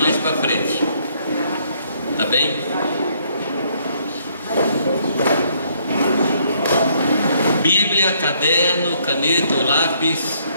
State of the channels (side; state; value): both; inverted; correlation -0.68